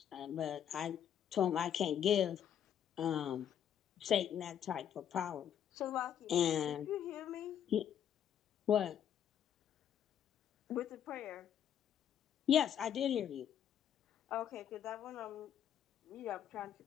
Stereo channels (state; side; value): quieter; right; 9.5 dB